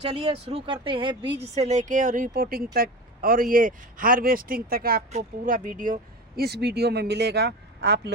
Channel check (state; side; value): normal; both; correlation 0.28